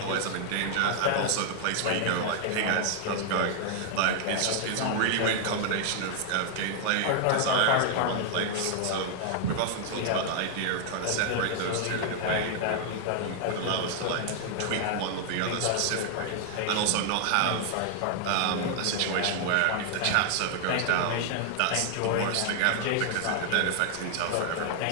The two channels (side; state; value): both; different; correlation 0.00